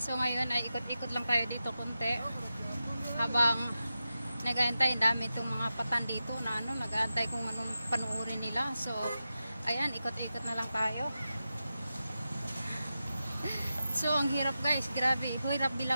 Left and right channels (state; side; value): inverted; both; correlation -0.91